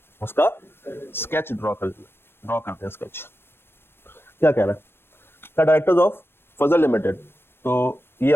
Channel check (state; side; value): late; right; 0.11 ms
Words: उसका स्केच ड्रॉ कर लेना, ड्रॉ करते हैं स्केच। क्या कह रहा है? The directors of Fazal limited, तो ये